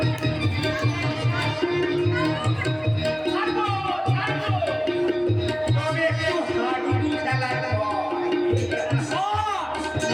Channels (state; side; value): identical; both; correlation 1.00